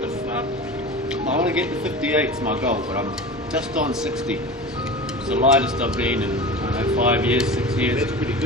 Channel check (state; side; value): normal; both; correlation 0.32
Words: the fuck? I want to get to 58's my goal, but I'm just on 60. It's the lightest I've been in, I don't know, 5 years, 6 years. That's pretty